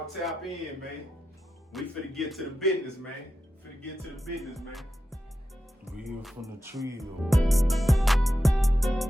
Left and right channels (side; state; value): both; normal; correlation 0.90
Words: tap in, man. We finna get to the business, man. Finna get to the business, man. Real from the Trill.